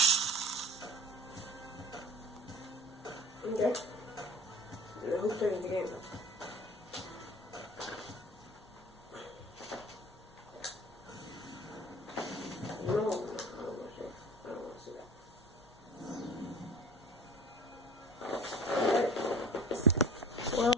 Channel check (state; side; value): normal; both; correlation 0.40